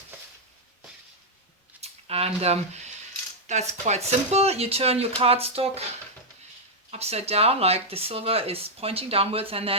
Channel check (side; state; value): both; normal; correlation -0.03